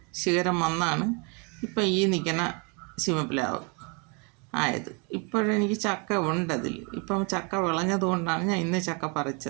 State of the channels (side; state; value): left; quieter; 32.8 dB